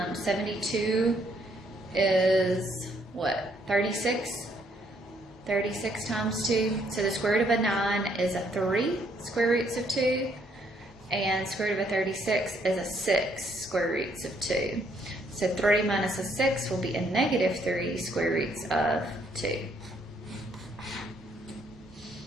72 is what, 36? 36 times 2. So the square root of a 9 is a 3 square roots of 2, and square root of a 36 is a 6 square roots of 2. So 3 minus a 6 will be a negative 3 square roots of 2.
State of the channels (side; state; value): both; normal; correlation 0.70